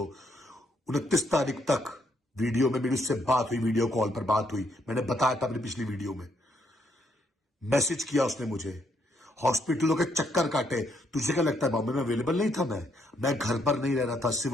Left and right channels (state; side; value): normal; both; correlation 0.74